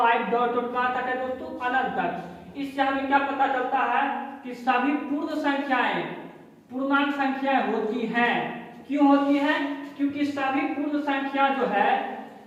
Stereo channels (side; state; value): both; identical; correlation 1.00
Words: डॉट डॉट कहां तक है दोस्तों, अनंत तक। इससे हमें क्या पता चलता है कि सभी पूर्ण संख्याएं पूर्णांक संख्याएं होती हैं। क्यों होती हैं, क्योंकि सभी पूर्ण संख्या जो है